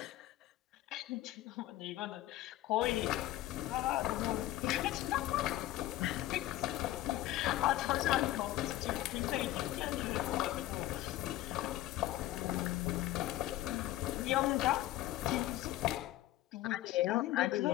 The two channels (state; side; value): quieter; right; 15.4 dB